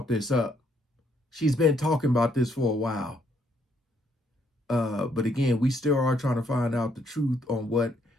this up. She's been talking about this for a while. But again, we still are trying to find out the truth on what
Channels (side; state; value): both; normal; correlation 0.71